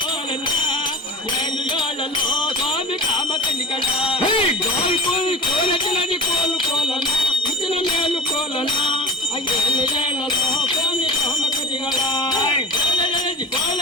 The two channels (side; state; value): both; normal; correlation 0.35